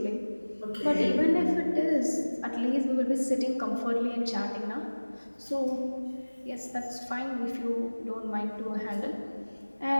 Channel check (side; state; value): both; inverted; correlation -1.00